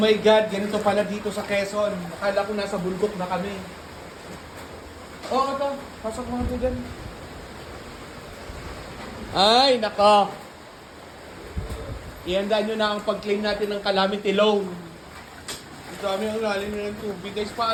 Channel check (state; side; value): identical; both; correlation 1.00